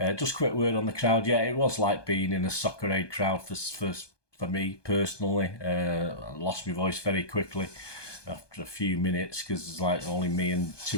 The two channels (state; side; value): late; right; 1.2 ms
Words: Just quick word on the crowd. Yeah, it was like being in a Soccer Aid crowd for me personally. I lost my voice very quickly after a few minutes because it's like only me and